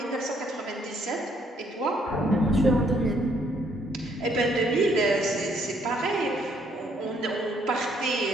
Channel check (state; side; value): normal; both; correlation 0.68